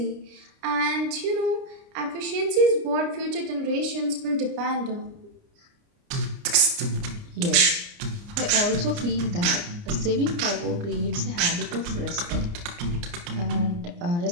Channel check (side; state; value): left; late; 29 ms